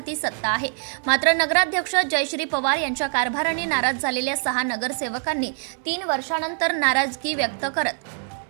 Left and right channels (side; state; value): left; silent; 63 dB below the other